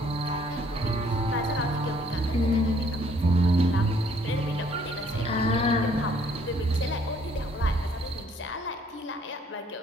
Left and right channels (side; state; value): both; normal; correlation 0.63